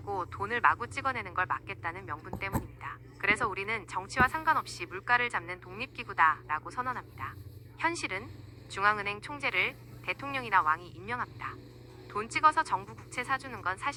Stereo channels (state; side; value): identical; both; correlation 1.00